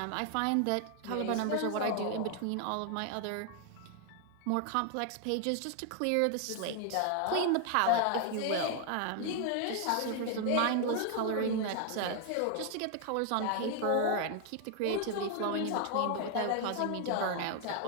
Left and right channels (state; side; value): different; both; correlation 0.00